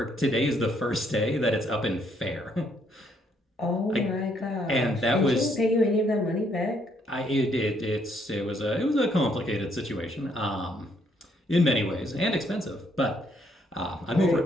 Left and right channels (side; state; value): both; normal; correlation 0.70